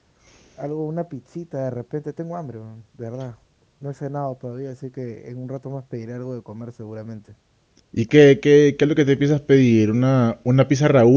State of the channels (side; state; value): both; identical; correlation 1.00